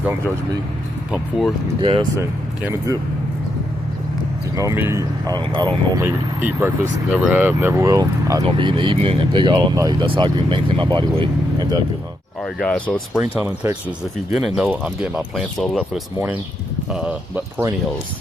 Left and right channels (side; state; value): both; normal; correlation 0.81